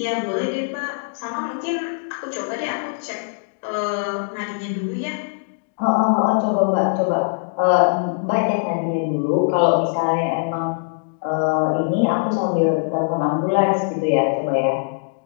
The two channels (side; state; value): right; silent; digital silence